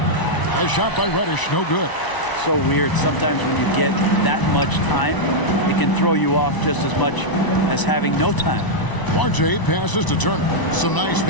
A shot by Reddish, no good. So weird. Sometimes when you get that much time, it can throw you off just as much as having no time. RJ passes to Turner. Some nice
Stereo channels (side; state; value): right; late; 1.0 ms